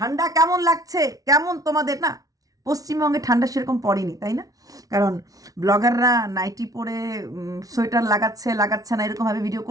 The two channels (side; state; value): left; late; 0.18 ms